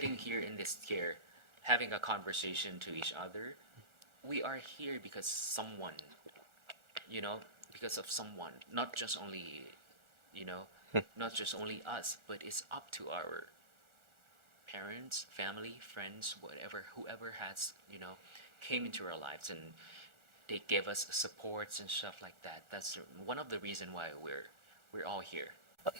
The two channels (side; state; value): left; late; 1.4 ms